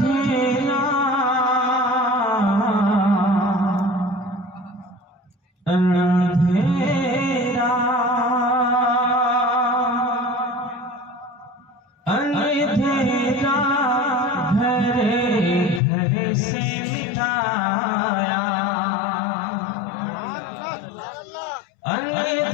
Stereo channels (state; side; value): drops out; right; at 15.8 s